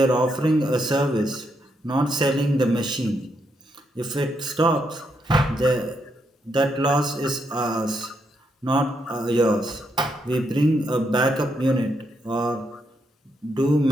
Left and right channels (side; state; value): both; normal; correlation 0.79